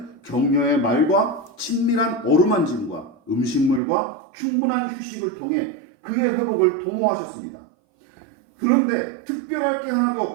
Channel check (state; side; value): drops out; left; at 3.8 s